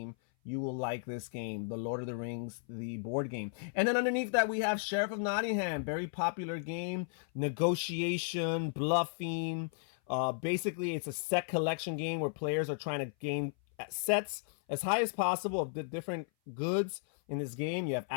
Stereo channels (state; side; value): silent; right; 55 dB below the other